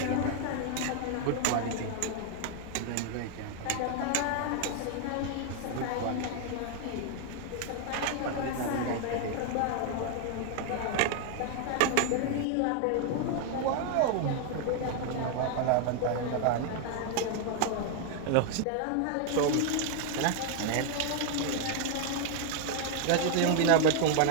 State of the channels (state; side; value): different; both; correlation 0.00